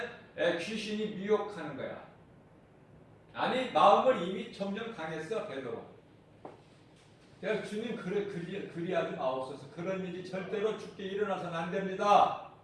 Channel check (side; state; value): both; identical; correlation 1.00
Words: 귀신이 미혹하는 거야. 아니 마음을 이미 점점 강했어 베드로. 그래서 주님 그리하지 마옵소서. 그런 일이 절대로 죽게 일어나서는 안 됩니다.